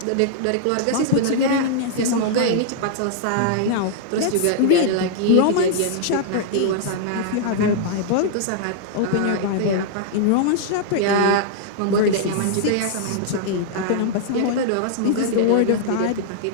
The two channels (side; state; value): both; different; correlation -0.01